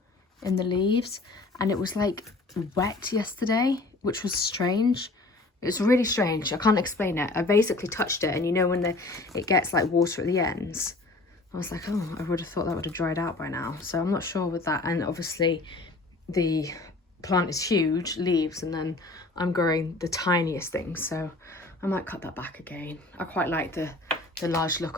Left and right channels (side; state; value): right; quieter; 3.2 dB